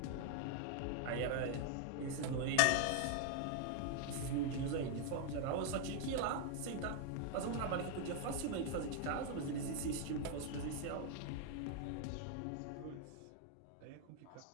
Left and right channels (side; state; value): both; different; correlation 0.00